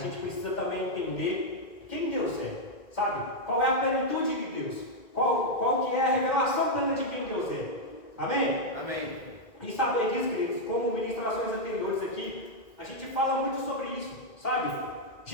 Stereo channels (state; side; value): late; right; 2.1 ms